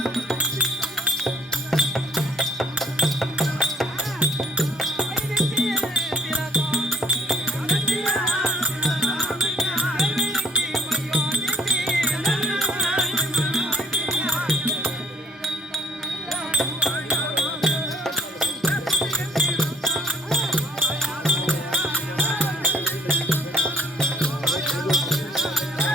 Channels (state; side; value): normal; both; correlation 0.61